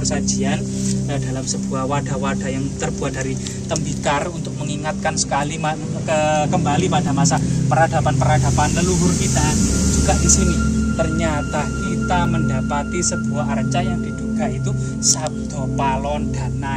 dalam sebuah wadah-wadah yang terbuat dari tembikar untuk mengingatkan sekali kembali pada masa peradaban leluhur kita. Juga di sini ternyata kita mendapati sebuah arca yang diduga itu Sabdo Palon dan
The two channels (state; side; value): identical; both; correlation 1.00